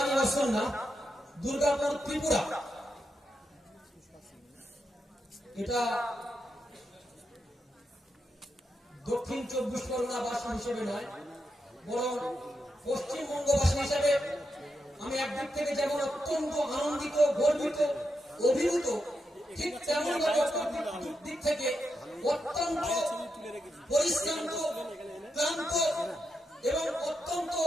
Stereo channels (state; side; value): normal; both; correlation 0.85